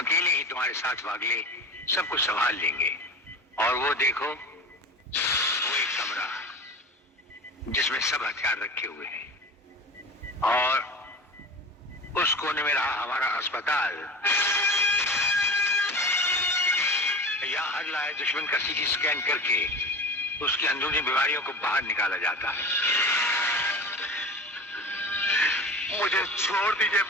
ही तुम्हारे साथ वागले सब कुछ संभाल लेंगे। और वो देखो, वो एक कमरा जिसमें सब हथियार रखे हुए हैं, और उस कोने में रहा हमारा अस्पताल। यहाँ हर लाए दुश्मन का सीटी स्कैन करके उसकी अंदरूनी बीमारियों को बाहर निकाला जाता है। मुझे छोड़ दीजिए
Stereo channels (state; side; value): normal; both; correlation 0.33